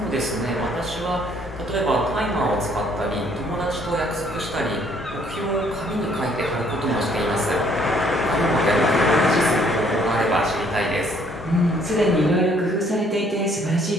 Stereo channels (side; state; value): both; normal; correlation 0.63